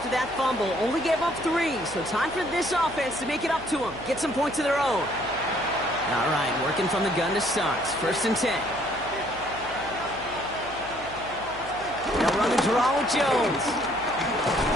that fumble. Only gave up 3, so time for this offense to make it up to them. Get some points of their own. All right, working from the gun to start. First and 10. They'll run the draw with Jones.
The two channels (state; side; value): noise; right; hum, 18 dB below the sound